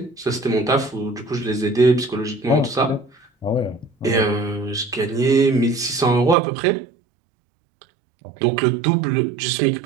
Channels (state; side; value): drops out; left; at 6.4 s